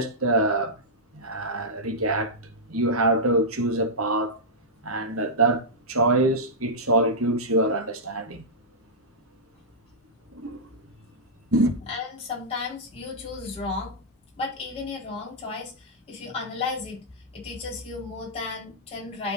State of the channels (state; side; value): normal; both; correlation -0.11